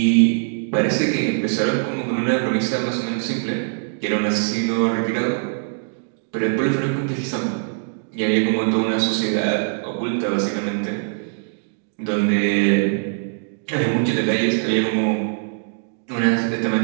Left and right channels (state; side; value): silent; left; digital silence